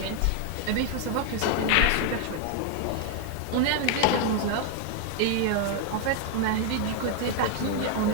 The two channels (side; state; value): both; different; correlation 0.00